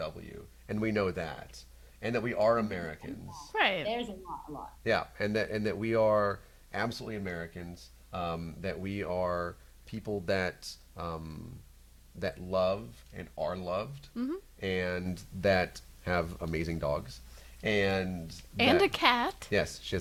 and we know that, and that we are Americans. Right. There's a lot. Yeah, and that we are absolutely Americans. That we are people that that love and are loved, and that have amazing dogs, and a cat. Yes, she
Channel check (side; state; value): both; identical; correlation 1.00